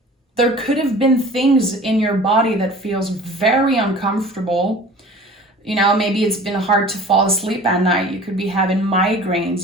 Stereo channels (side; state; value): both; normal; correlation 0.43